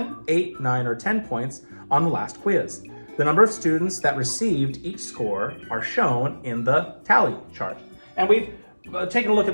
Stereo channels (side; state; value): both; inverted; correlation -1.00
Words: 8, 9, or 10 points on the last quiz. The number of students that received each score are shown in the tally chart. And we've taken a look at